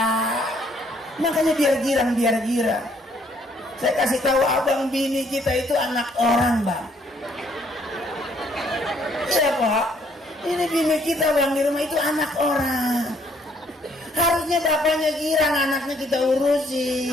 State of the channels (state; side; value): normal; both; correlation 0.66